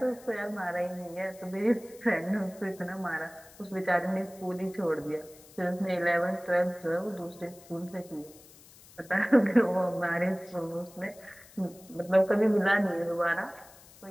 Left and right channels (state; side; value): noise; left; hiss, 23 dB below the sound